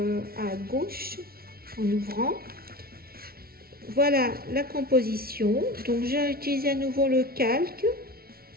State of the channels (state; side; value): late; left; 0.44 ms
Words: à gauche en ouvrant. Voilà la composition. Donc j'ai utilisé à nouveau le calque.